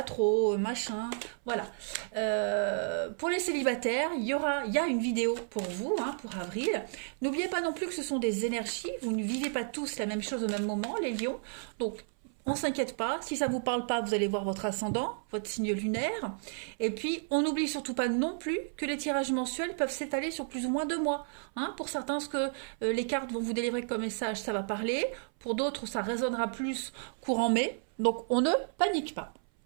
trop, machin, voilà. Pour les célibataires, il y a une vidéo pour vous, pour avril. N'oubliez pas non plus que ce sont des énergies, vous ne vivez pas tous la même chose au même moment, les lions, donc on s'inquiète pas, si ça vous parle pas, vous allez voir votre ascendant, votre signe lunaire. Et puis, on n'oublie surtout pas non plus que les tirages mensuels peuvent s'étaler sur plus ou moins 2 mois. Pour certains, ce que les cartes vont vous délivrer comme message, ça va parler. Pour d'autres, ça résonnera plus courant mai. Donc, on ne panique pas.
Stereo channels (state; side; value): silent; left; 56 dB below the other